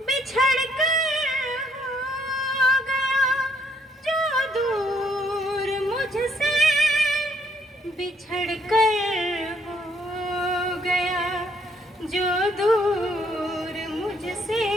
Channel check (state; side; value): normal; both; correlation 0.68